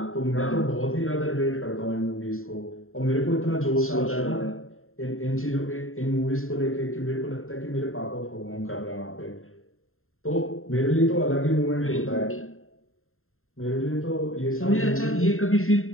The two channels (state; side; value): late; right; 0.61 ms